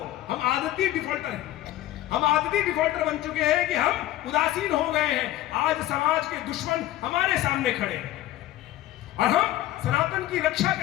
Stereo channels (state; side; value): quieter; right; 14.6 dB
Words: हम आदती डिफॉल्टर हैं। हम आदती डिफॉल्टर बन चुके हैं कि हम उदासीन हो गए हैं। आज समाज के दुश्मन हमारे सामने खड़े हैं और हम सनातन की रक्षा